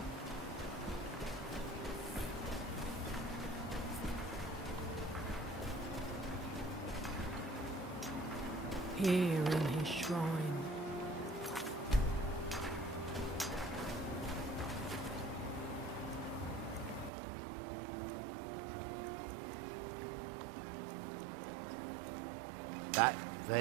Here in his shrine. That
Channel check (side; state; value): left; drops out; at 17.1 s